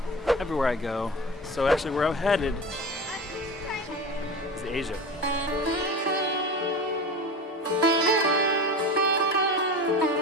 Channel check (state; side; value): normal; both; correlation 0.30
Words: everywhere I go. So actually where I'm headed is Asia.